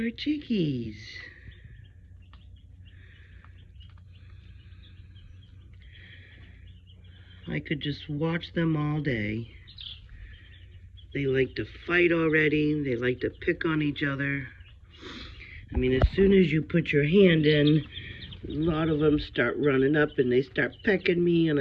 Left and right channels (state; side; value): identical; both; correlation 1.00